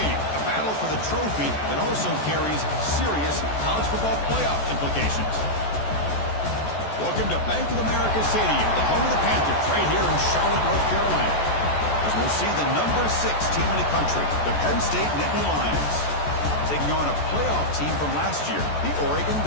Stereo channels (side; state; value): right; late; 14 ms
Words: a battle for the trophy that also carries serious college football playoff implications. Welcome to Bank of America Stadium, the home of the Panthers, right here in Charlotte, North Carolina, as we'll see the number 6 team in the country, the Penn State Nittany Lions, taking on a playoff team from last year, the Oregon